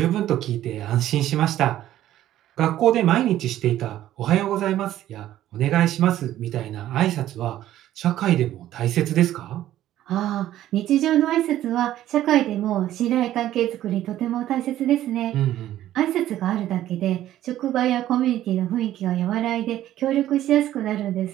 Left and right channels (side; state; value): left; quieter; 13.1 dB